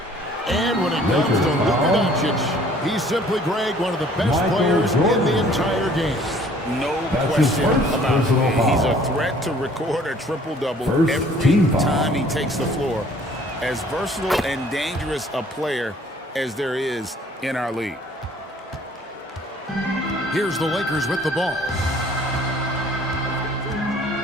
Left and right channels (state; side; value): normal; both; correlation 0.56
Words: And when it comes to Luka Doncic, he's simply, Greg, one of the best players in the entire game. No question about it. He's a threat to record a triple-double every time he takes the floor. As versatile and dangerous a player as there is in our league. Here's the Lakers with the ball.